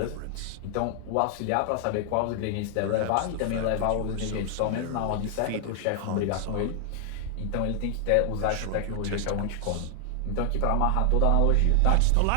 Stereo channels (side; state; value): both; different; correlation 0.00